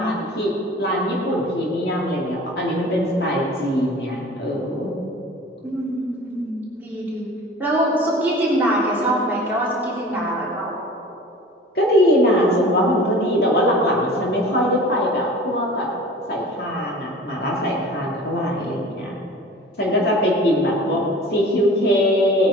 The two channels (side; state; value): both; normal; correlation 0.42